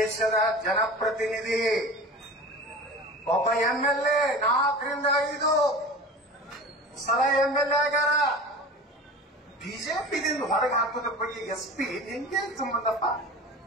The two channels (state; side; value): normal; both; correlation 0.36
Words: ಜನಪ್ರತಿನಿಧಿ, ಒಬ್ಬ MLA 4ರಿಂದ 5 ಸಲ MLA ಆಗ್ಯಾರ. ಬಿಜೆಪಿದಿಂದ ಹೊರಗೆ ಹಾಕೋದ್ರ ಬಗ್ಗೆ SP ನಿಂಗೆ ಸಂಬಂಧಪ್ಪ?